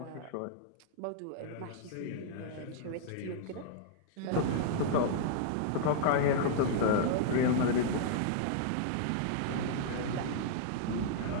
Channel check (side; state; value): both; different; correlation -0.01